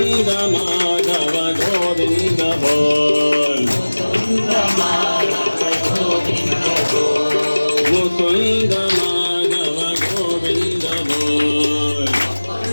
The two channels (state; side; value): inverted; both; correlation -1.00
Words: माधव गोविंद बोल मुकुंद माधव गोविंद बोल